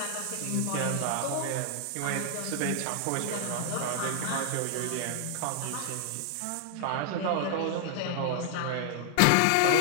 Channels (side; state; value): both; different; correlation 0.00